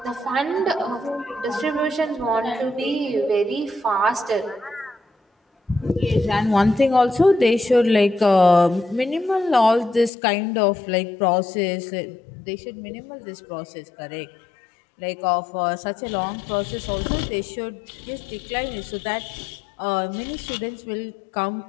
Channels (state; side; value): drops out; right; at 10.1 s